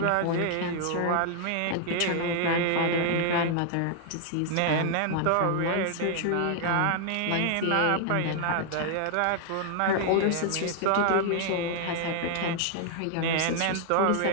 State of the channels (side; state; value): both; different; correlation 0.00